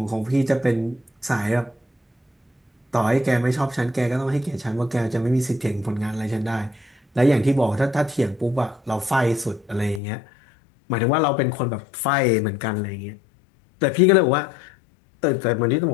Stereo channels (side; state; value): right; drops out; at 10.0 s